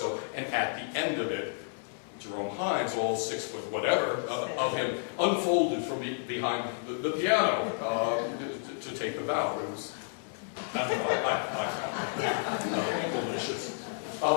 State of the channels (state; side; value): silent; right; 57 dB below the other